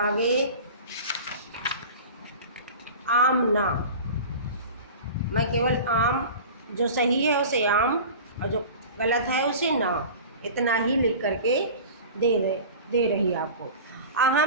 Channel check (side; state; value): both; inverted; correlation -0.36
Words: आमना, मैं केवल आम, जो सही है उसे आम और जो गलत है उसे ना, इतना ही लिख करके दे रही आपको।